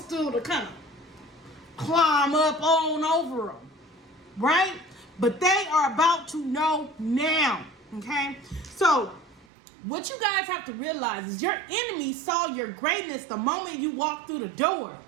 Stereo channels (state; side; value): drops out; left; at 9.5 s